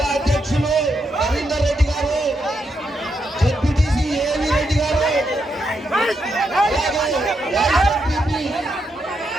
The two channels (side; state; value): both; normal; correlation 0.81